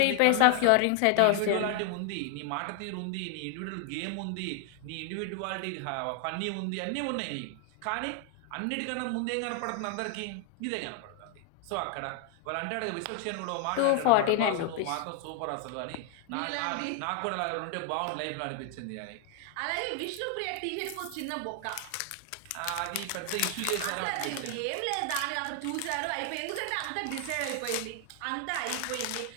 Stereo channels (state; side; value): different; both; correlation 0.00